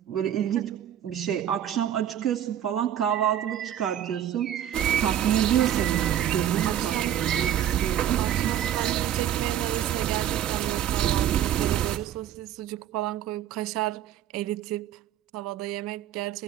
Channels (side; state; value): left; quieter; 10.9 dB